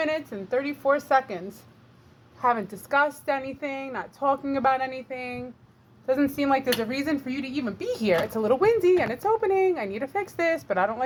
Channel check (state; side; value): identical; both; correlation 1.00